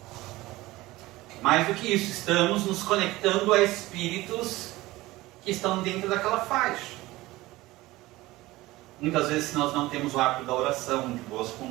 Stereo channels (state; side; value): quieter; left; 18.8 dB